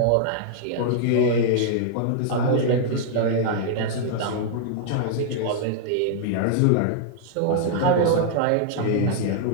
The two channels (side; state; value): both; different; correlation -0.01